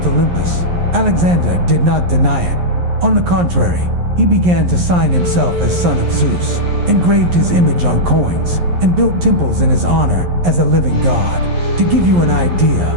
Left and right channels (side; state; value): left; late; 11 ms